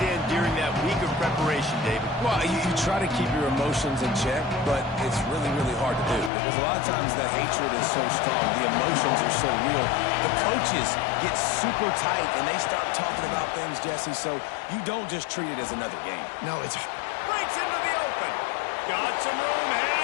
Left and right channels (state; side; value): drops out; right; at 6.3 s